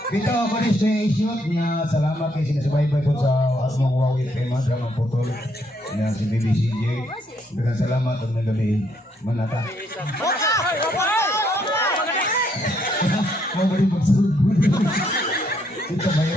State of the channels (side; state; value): both; normal; correlation 0.72